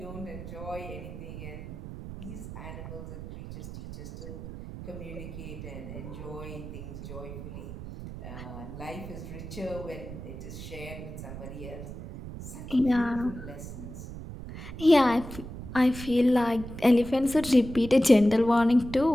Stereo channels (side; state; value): right; noise; rumble, 10 dB below the sound